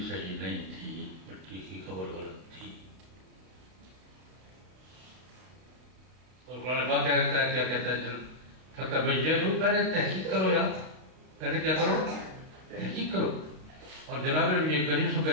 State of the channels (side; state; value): left; late; 32 ms